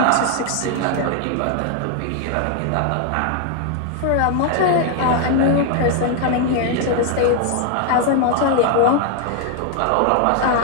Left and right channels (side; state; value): both; different; correlation 0.00